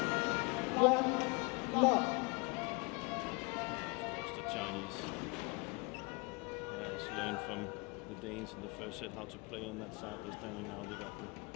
From the Danes in the first set how to play on that side. They're standing now. They got the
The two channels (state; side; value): quieter; right; 29.9 dB